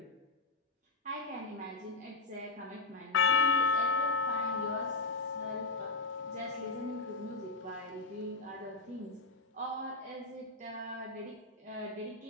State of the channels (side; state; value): right; quieter; 3.5 dB